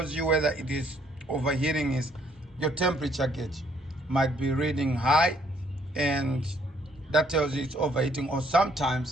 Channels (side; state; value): both; normal; correlation 0.66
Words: you whether it is overheating is your temperature gauge might be reading high, and that tells you it's overheating. Or